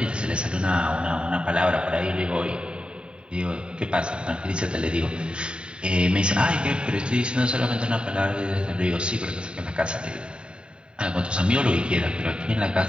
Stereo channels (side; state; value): left; late; 0.051 ms